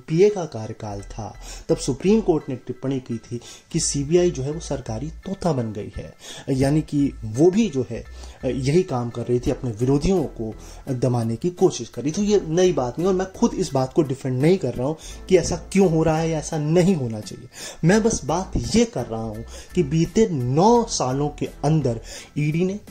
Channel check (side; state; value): both; identical; correlation 1.00